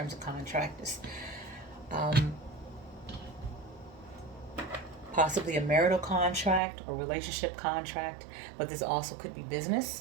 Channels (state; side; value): drops out; left; at 6.6 s